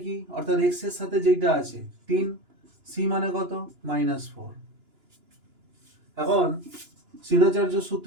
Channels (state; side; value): late; left; 2.9 ms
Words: কি অর্থাৎ x এর সাথে যেটা আছে 3, c মানে কত -4। এখন শ্রীধরাচার্য